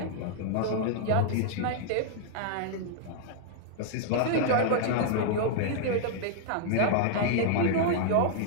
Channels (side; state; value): both; different; correlation -0.01